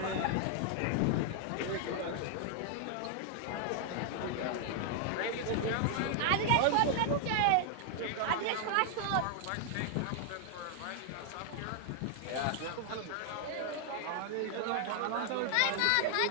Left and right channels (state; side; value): different; both; correlation 0.00